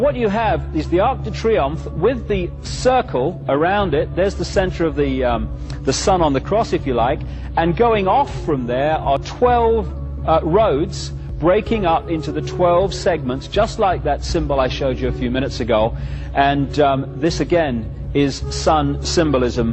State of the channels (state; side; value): identical; both; correlation 1.00